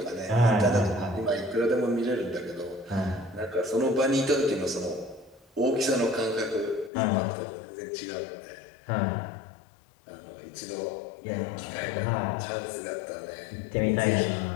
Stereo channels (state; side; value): drops out; right; at 6.9 s